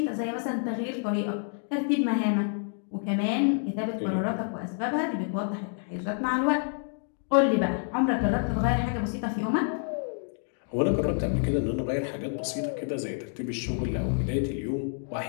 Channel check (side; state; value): right; silent; 59 dB below the other